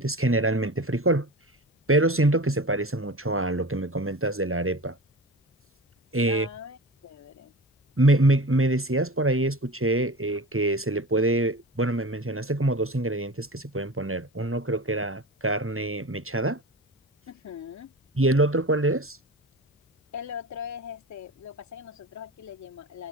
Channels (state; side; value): normal; both; correlation 0.33